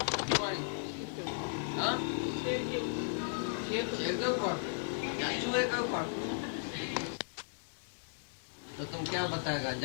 शेर के ऊपर या चूहे के ऊपर? तो तुम क्या बताएगा?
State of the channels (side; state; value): right; silent; digital silence